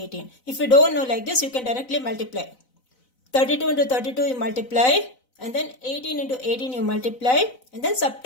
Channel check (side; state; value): right; late; 4.0 ms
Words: If you don't know like this, you can directly multiply. 32 into 32 you multiply, and then 18 into 18 you multiply, and then